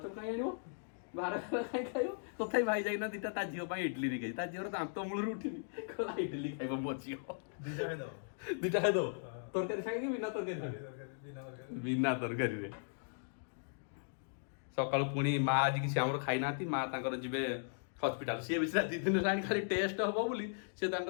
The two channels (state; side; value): silent; right; digital silence